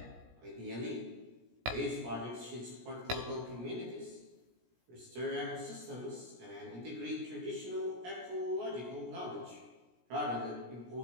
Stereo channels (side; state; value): left; late; 17 ms